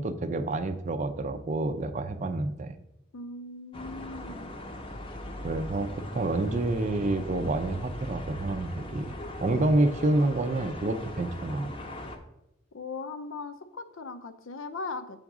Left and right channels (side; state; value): both; normal; correlation 0.63